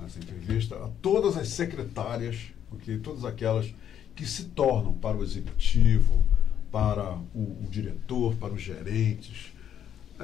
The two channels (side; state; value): right; quieter; 9.7 dB